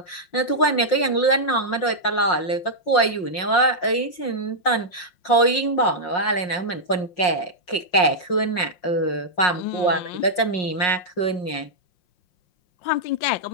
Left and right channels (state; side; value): late; right; 5.6 ms